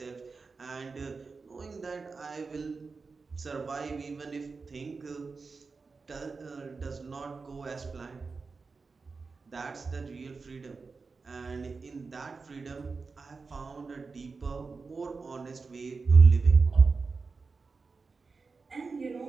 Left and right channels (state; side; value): quieter; left; 4.4 dB